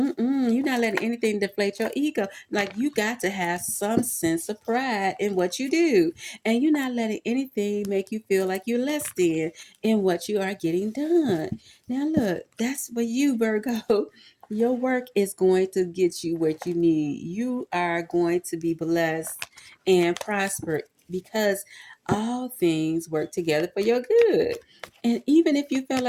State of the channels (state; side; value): identical; both; correlation 1.00